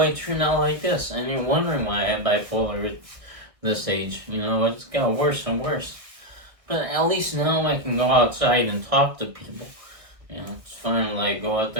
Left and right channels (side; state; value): left; late; 1.6 ms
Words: turned out like this. And you're wondering why I have bipolar at this age. It's got worse and worse. But at least now I can go outside and talk to people. It's finally go out